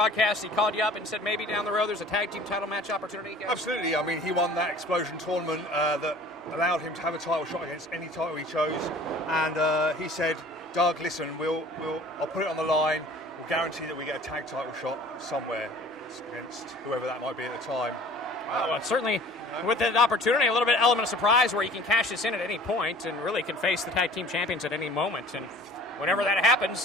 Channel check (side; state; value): both; normal; correlation 0.47